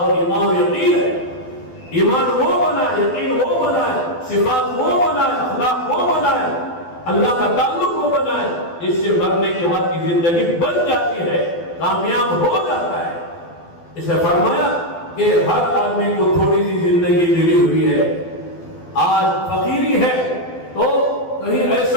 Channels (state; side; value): late; right; 12 ms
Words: اور ایمان و یقین ہے. ایمان وہ بنائے، یقین وہ بنائے، صفات وہ بنائے، اخلاق وہ بنائے، اللہ کا تعلق وہ بنائے، اس سے مرنے کے بعد کی زندگی بن جاتی ہے، کامیاب ہو جاتا ہے. اس نے فرمایا کہ ہر آدمی کو تھوڑی سی زندگی ملی ہوئی ہے. آج فقیری ہے تو کہیں